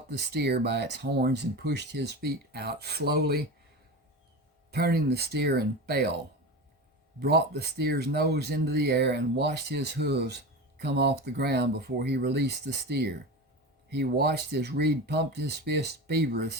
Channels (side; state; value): both; normal; correlation 0.26